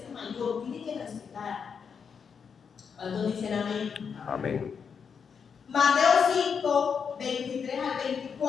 mayor. Tiene que respetar. ¿Cuántos dicen amén? Amén. Mateo 5, 23 al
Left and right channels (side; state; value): right; quieter; 6.5 dB